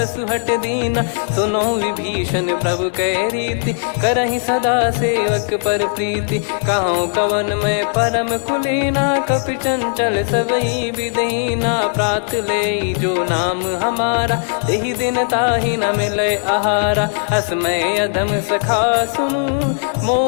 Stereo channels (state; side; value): silent; right; digital silence